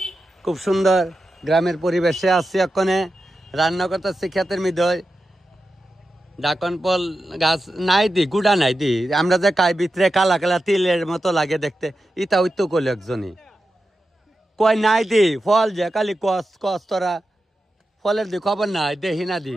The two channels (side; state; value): both; normal; correlation 0.91